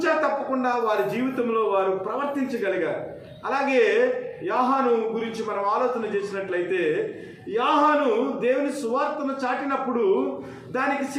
తప్పకుండా వారి జీవితంలో వారు ప్రవర్తించగలిగారు. అలాగే యోహాను గురించి మనం ఆలోచన చేసినట్లయితే, యోహాను దేవుని సువార్తను చాటినప్పుడు దానికి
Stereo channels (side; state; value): both; identical; correlation 1.00